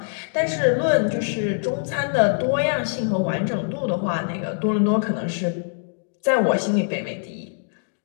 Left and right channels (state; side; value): silent; right; digital silence